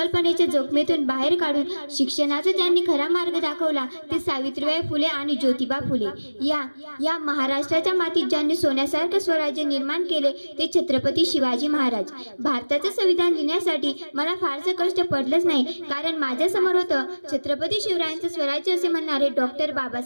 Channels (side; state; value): both; inverted; correlation -1.00